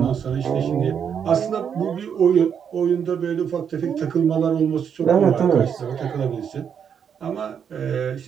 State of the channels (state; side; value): quieter; left; 7.7 dB